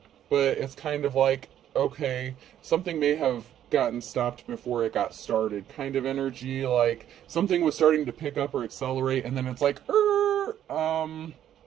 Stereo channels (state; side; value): quieter; left; 10.8 dB